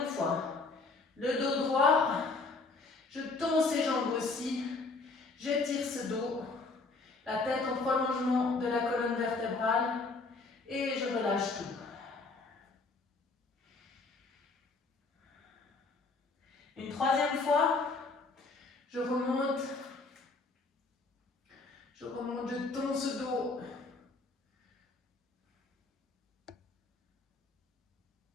fois. Le dos droit. Je tends ses jambes aussi. J'étire ce dos. La tête en prolongement de la colonne vertébrale. Et je relâche tout. Une troisième fois, je remonte, je tends ce dos.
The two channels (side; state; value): right; quieter; 3.8 dB